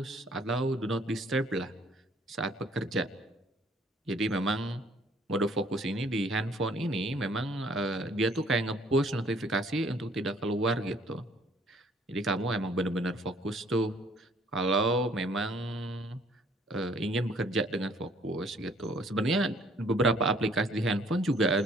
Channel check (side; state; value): both; normal; correlation 0.60